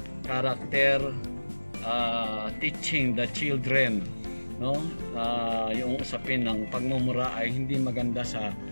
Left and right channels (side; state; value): both; inverted; correlation -1.00